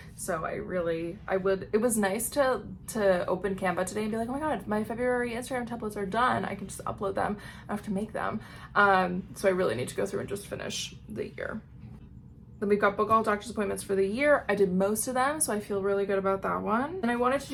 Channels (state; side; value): identical; both; correlation 1.00